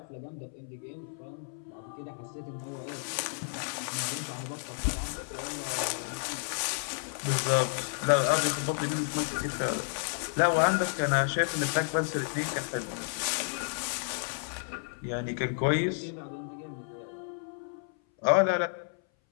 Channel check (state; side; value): silent; right; 57 dB below the other